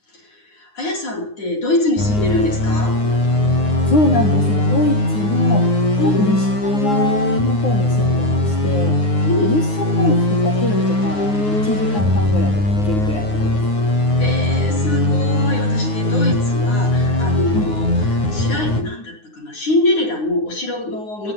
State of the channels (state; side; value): late; right; 9.6 ms